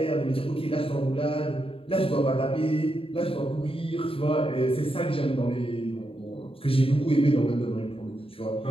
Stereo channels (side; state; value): right; late; 0.27 ms